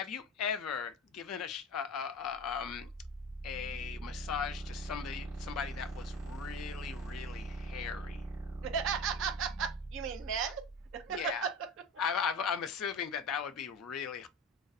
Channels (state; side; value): normal; both; correlation 0.33